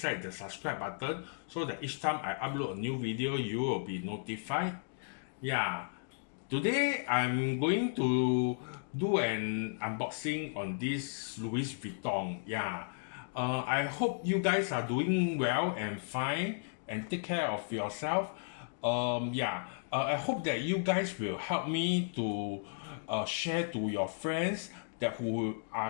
the subscribe button so that each time I upload a new video you will be notified. Yeah, today I'm going to do an unboxing on this Louis Vuitton. Yeah, I hope you guys are doing well and fine and take care of yourself. I hope that you guys will help me to share to your friends that who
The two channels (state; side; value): silent; right; digital silence